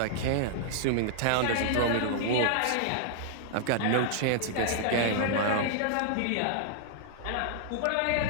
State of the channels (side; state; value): both; different; correlation -0.01